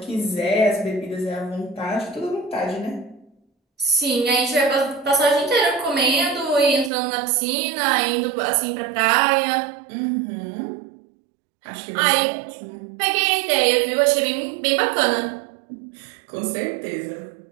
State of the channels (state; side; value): drops out; left; at 6.9 s